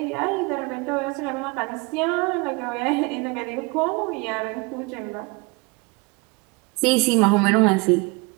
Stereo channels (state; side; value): quieter; left; 27.4 dB